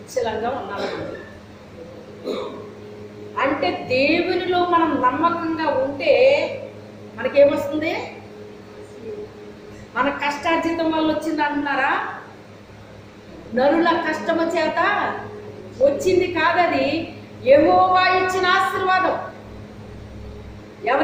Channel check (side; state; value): both; identical; correlation 1.00